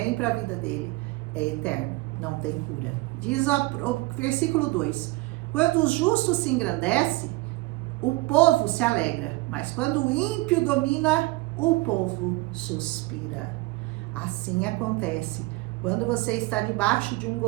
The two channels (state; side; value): quieter; left; 21.0 dB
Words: para a vida dele é eterno, não tem cura. Diz o versículo 2, quando o justo se engrandece, o povo se alegra, mas quando o ímpio domina, o povo suspira. Assim acontece quando você está debaixo de um